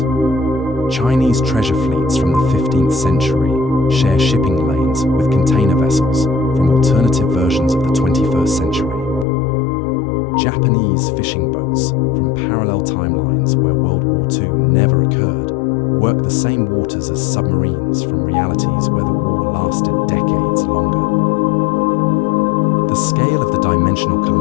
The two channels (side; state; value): right; drops out; at 9.2 s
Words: Chinese treasure fleets from the 15th century share shipping lanes with container vessels from alternative versions of the 21st century. Japanese fishing boats from parallel timelines where World War II never occurred work the same waters as submarines from realities where the war lasted decades longer. The scale of the dimensional